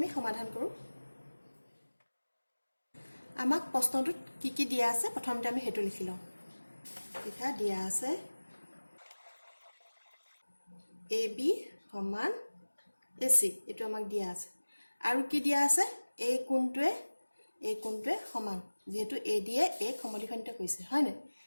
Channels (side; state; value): both; inverted; correlation -1.00